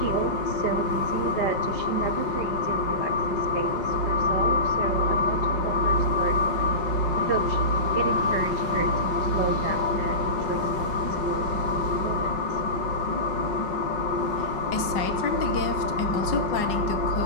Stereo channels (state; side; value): late; right; 5.3 ms